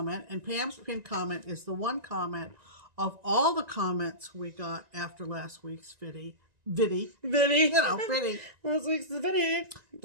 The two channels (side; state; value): left; late; 1.9 ms